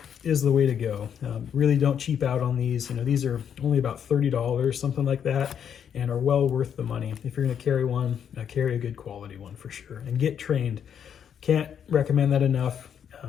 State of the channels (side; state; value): right; quieter; 8.4 dB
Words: is the way to go. Really don't cheap out on these. These are only about $30, something like that, and are well worth the money. If you're going to carry one, carry a good quality one for sure, and get trained. Can't recommend that enough.